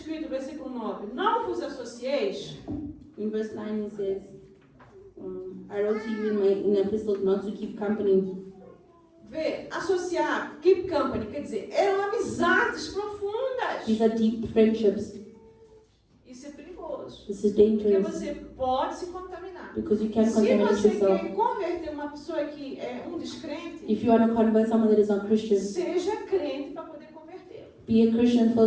versículo 9, não vos associeis. In verse 9 it says, I wrote to you in an epistle not to keep company. Vê, associar, keep company, quer dizer, eram amizades profundas. These are deep friendships. Isso é perigoso. This is Porque dangerous você pode se contaminar. because you can Se contaminate você yourself. quer converter uma pessoa que é um descrente, If you want to convert someone that is not Christian, seja crente para poder converter. be a Christian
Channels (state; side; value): identical; both; correlation 1.00